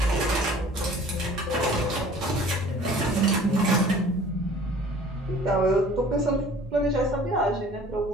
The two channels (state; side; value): normal; both; correlation 0.49